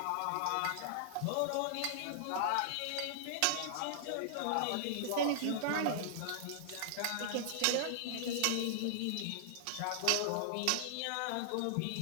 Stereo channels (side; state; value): both; different; correlation -0.01